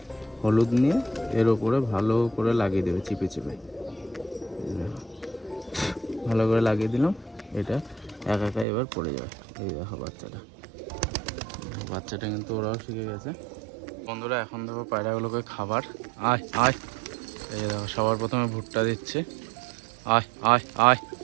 হলুদ নিয়ে এর ওপরে ভালো করে লাগিয়ে দেবে চিপে চিপে। ভালো করে লাগিয়ে দিলাম, এটা একা একা এবার পড়ে যাবে। এই দেখো বাচ্চাটা কিন্তু ওরাও শিখে গেছে। বন্ধুরা এখন দেখো পায়রাগুলোকে খাবার, আয় আয়। এই দেখো সবার প্রথমে ভুট্টা দিচ্ছে, আয় আয় আয়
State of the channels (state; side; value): drops out; left; at 8.7 s